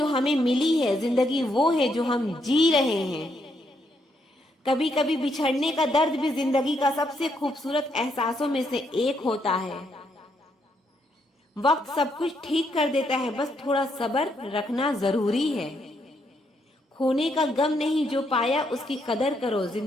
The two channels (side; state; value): both; normal; correlation 0.76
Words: हमें मिली है, जिंदगी वो है जो हम जी रहे हैं। कभी कभी बिछड़ने का दर्द भी जिंदगी का सबसे खूबसूरत एहसासों में से एक होता है। वक्त सब कुछ ठीक कर देता है, बस थोड़ा सब्र रखना जरूरी है। खोने का गम नहीं, जो पाया उसकी कदर करो,